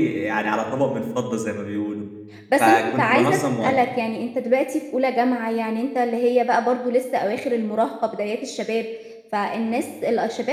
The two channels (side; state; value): both; identical; correlation 1.00